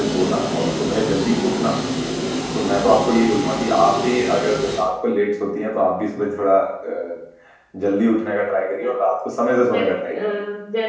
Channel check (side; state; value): both; identical; correlation 1.00